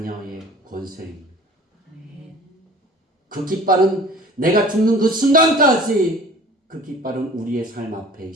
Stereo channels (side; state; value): both; normal; correlation 0.46